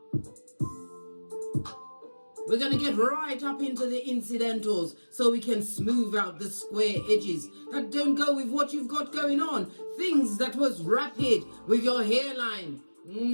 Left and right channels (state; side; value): inverted; both; correlation -1.00